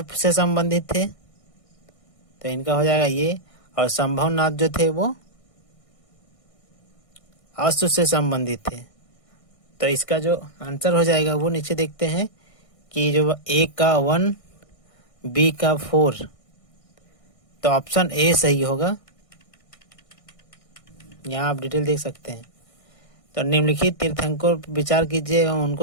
से संबंधित थे। तो इनका हो जाएगा ये। और संभवनाथ जो थे वो अश्व से संबंधित थे। तो इसका जो आंसर हो जाएगा वो नीचे देखते हैं कि जो ए का 1, बी का 4। तो ऑप्शन ए सही होगा। यहाँ आप डिटेल देख सकते हैं। तो निम्नलिखित तीर्थंकर पर विचार कीजिए एवं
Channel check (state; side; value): late; right; 1.6 ms